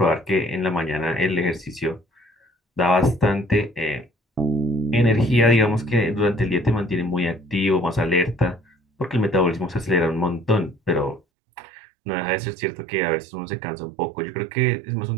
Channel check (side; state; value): left; drops out; at 11.2 s